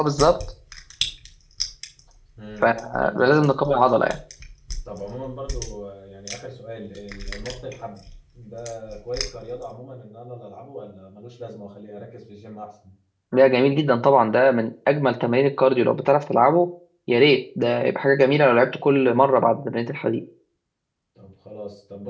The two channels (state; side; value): identical; both; correlation 1.00